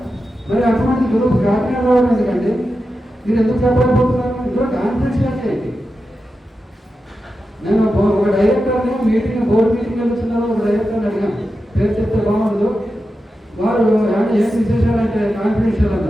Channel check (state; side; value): normal; both; correlation 0.90